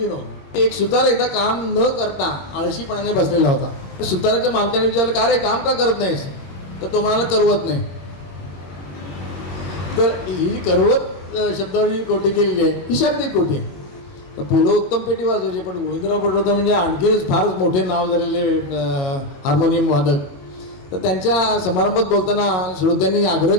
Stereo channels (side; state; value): right; late; 22 ms